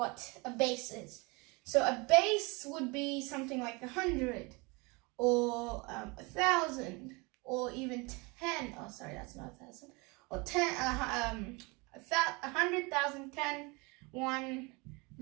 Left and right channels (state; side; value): quieter; left; 27.5 dB